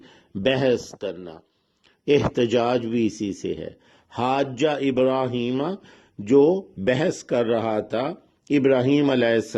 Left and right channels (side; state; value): both; identical; correlation 1.00